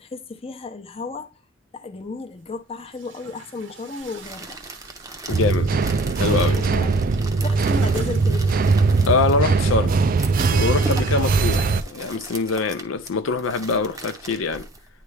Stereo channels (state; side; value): normal; both; correlation 0.49